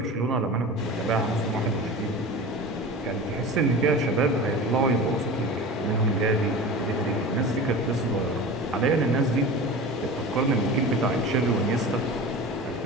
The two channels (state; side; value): normal; both; correlation 0.33